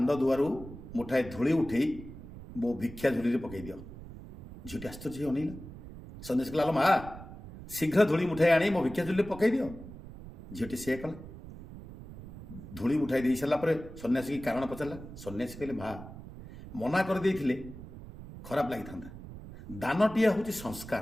ଦୁଆରୁ ମୁଠାଏ ଧୂଳି ଉଠେଇ ମୋ ଭିକ୍ଷା ଝୁଲିରେ ପକାଇ ଦିଅ। ଝିଅଟି ଆଶ୍ଚର୍ଯ୍ୟ ହେଇ ଅନେଇଲା। ସନ୍ନ୍ୟାସୀ କହିଲା ମା ଶୀଘ୍ର ଧୂଳି ମୁଠାଇ ଆଣି ମୋ ଭିକ୍ଷା ଝୁଲିରେ ପକାଇ ଦିଅ। ଝିଅଟି ସେୟା କଲା। ଧୂଳି ଉଠାଇ ଦେଇ ସାରିଲା ପରେ ସନ୍ନ୍ୟାସୀ କାରଣ ପଚାରିଲା। ସନ୍ନ୍ୟାସୀ କହିଲେ ମା ମନା କରିଦେଇଥିଲେ ଖରାପ ଲାଗିଥାନ୍ତା। ଦାନଟିଏ ହେଉଛି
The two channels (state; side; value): noise; right; rumble, 14 dB below the sound